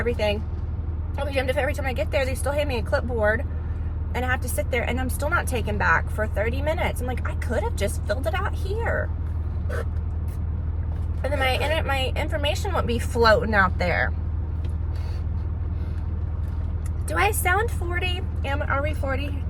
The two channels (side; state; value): both; identical; correlation 1.00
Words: I'll be damned if every time I get there, they still hand me a clipboard. And I have to sit there, and I'm still not taken back for 30 minutes. I'm like, I could have just filled it out here. And then my information won't be floating out there. Do I sound 40? Are we 40?